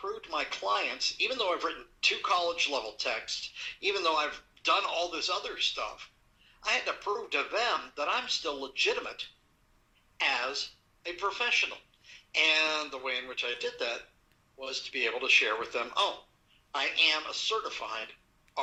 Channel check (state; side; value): identical; both; correlation 1.00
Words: to my clients, even though I've written 2 college-level texts, even though I've done all this other stuff, I had to prove to them that I'm still legitimate as a professional. And the way in which I did that was to be able to share with them, I am a certified